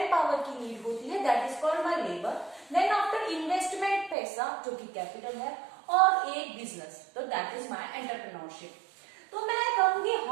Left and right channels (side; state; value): left; drops out; at 4.2 s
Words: पावर की नीड होती है, that is called my labour. Then after investment पैसा जो कि कैपिटल है, और एक बिजनेस, तो दैट इज माय एंटरप्रेन्योरशिप. तो मैं कहूंगी